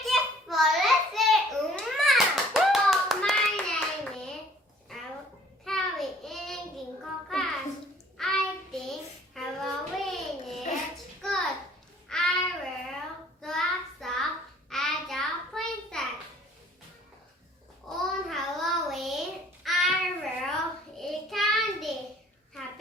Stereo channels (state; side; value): normal; both; correlation 0.56